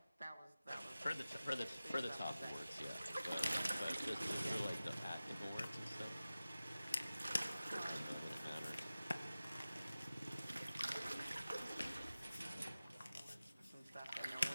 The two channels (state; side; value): inverted; both; correlation -0.96